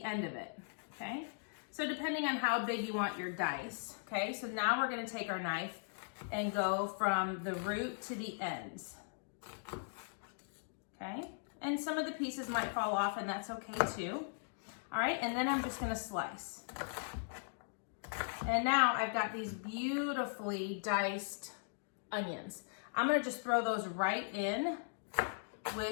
end of it, okay? So depending on how big you want your dice, okay? So now we're going to take our knife and go from the root to the ends, okay? And some of the pieces might fall off, and that's okay too. All right, and then I'm just going to slice. And now I've got these beautifully diced onions. I'm going to just throw those right in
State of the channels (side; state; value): right; silent; digital silence